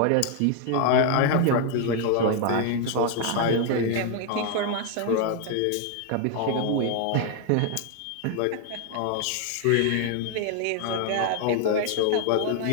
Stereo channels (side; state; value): both; different; correlation 0.00